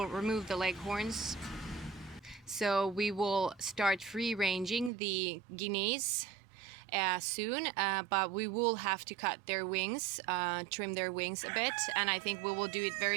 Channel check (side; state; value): left; drops out; at 4.9 s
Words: remove the leghorns. So we will start free ranging the Guineas soon, but we will have to cut their wings, trim their wings a bit, and I think we will do it